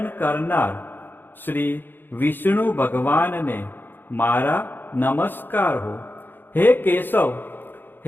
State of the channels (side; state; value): right; late; 0.096 ms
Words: કરનાર શ્રી વિષ્ણુ ભગવાનને મારા નમસ્કાર હો. હે કેશવ,